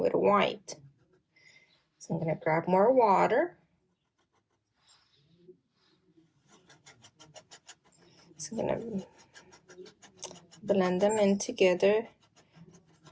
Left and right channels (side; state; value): both; identical; correlation 1.00